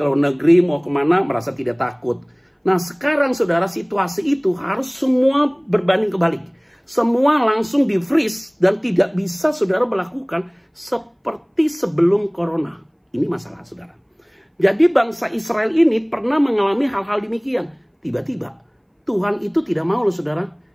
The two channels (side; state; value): both; identical; correlation 1.00